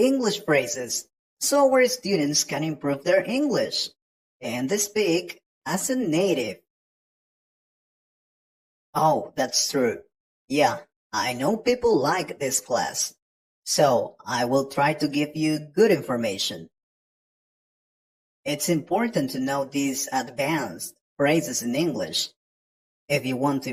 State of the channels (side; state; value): both; identical; correlation 1.00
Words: phrases so our students can improve their English and they speak as a native. Oh, that's true. Yeah, I know people like this class. So I will try to give you good information. It's important to know these advanced phrases in English if you want to